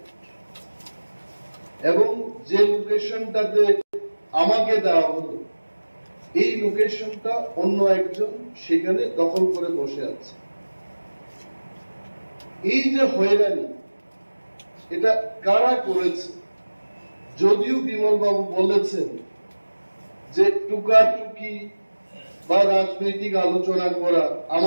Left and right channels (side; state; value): both; inverted; correlation -1.00